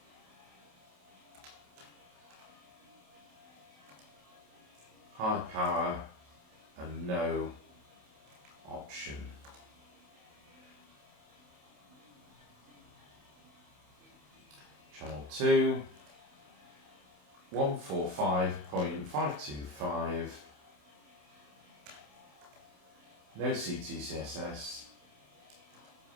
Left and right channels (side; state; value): left; late; 28 ms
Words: high power and no option. Channel 2, 145.525, no CTCSS,